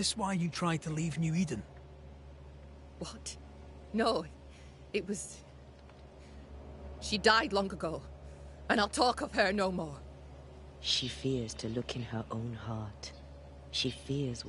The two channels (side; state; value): both; identical; correlation 1.00